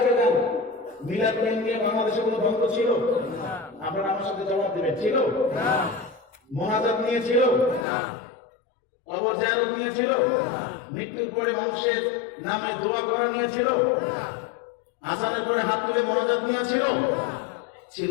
আগে যান, মিলাদ নিয়ে বাংলাদেশে কোনো দ্বন্দ্ব ছিল? আপনারা আমার সাথে জবাব দেবেন, ছিল? মোনাজাত নিয়ে ছিল? কবর জিয়ারত নিয়ে ছিল? মৃত্যুর পরে মানুষের নামে দোয়া করা নিয়ে ছিল? আজানের পরে হাত তুলে মোনাজাত নিয়ে ছিল? ছিল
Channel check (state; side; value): drops out; right; at 7.9 s